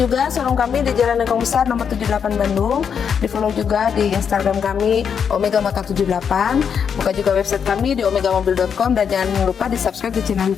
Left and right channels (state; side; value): quieter; right; 7.2 dB